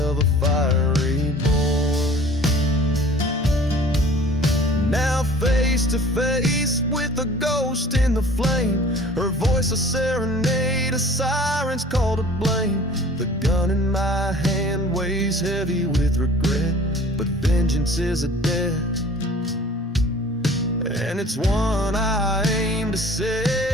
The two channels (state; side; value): normal; both; correlation 0.47